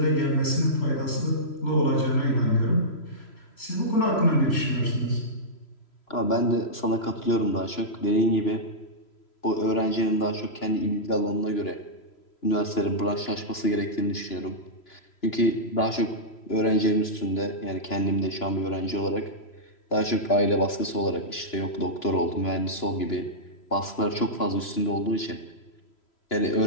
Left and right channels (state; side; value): late; right; 3.0 ms